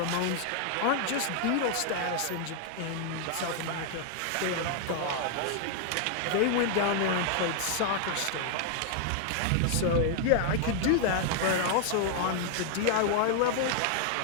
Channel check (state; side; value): different; both; correlation 0.00